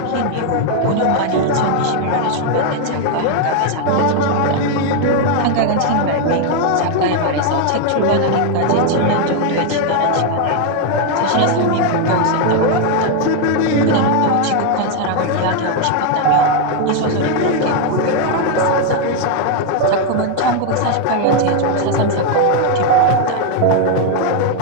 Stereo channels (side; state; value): both; different; correlation 0.01